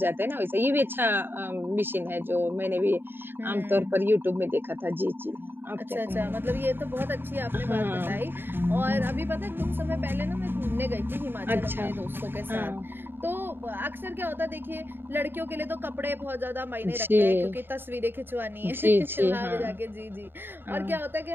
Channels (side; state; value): left; late; 0.10 ms